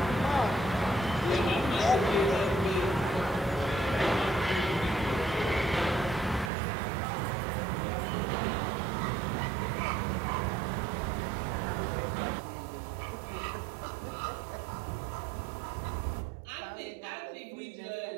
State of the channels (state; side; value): drops out; left; at 6.5 s